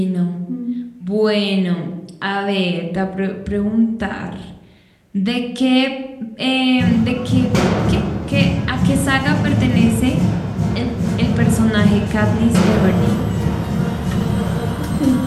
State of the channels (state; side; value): identical; both; correlation 1.00